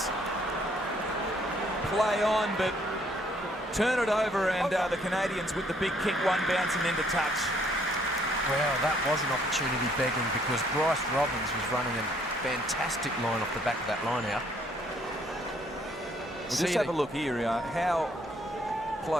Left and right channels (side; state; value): both; normal; correlation 0.65